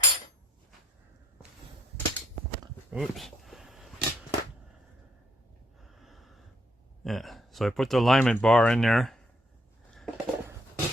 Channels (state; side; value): normal; both; correlation 0.71